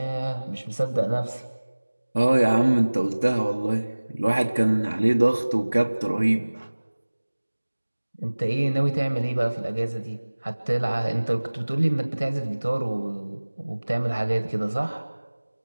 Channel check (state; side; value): inverted; both; correlation -1.00